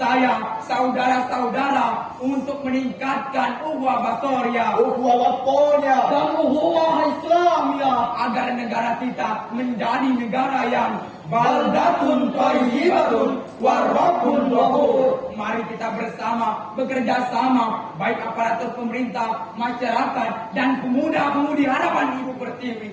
saudara-saudara, untuk meningkatkan ukhuwah basoriyah, Ukhuwah waponya dan ukhuwah Islamiyah, agar negara kita menjadi negara yang baldatun thayyibatun warabbun ghafur. Mari kita bersama bekerja sama, baik aparatur pemerintah, masyarakat, dan pemuda-pemudi harapan Ibu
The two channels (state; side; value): identical; both; correlation 1.00